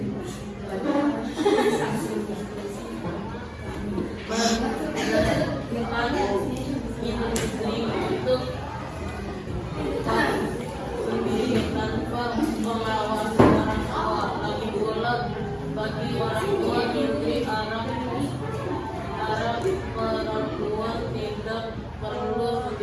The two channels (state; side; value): identical; both; correlation 1.00